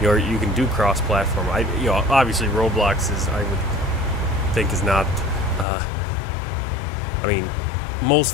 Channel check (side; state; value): right; drops out; at 5.7 s